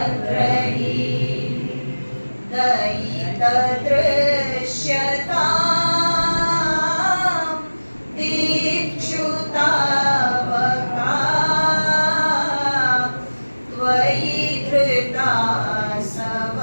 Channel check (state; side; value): inverted; both; correlation -1.00